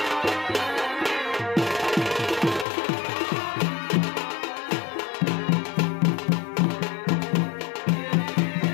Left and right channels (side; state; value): right; drops out; at 2.7 s